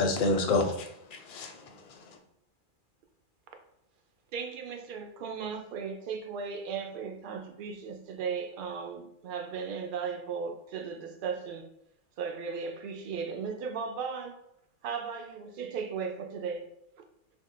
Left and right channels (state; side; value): late; left; 2.4 ms